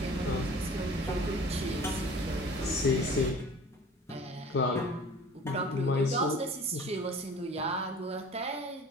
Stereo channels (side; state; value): both; normal; correlation 0.45